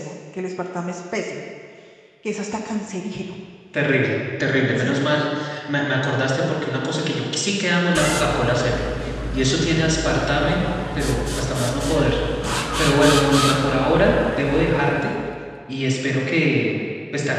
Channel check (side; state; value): both; identical; correlation 1.00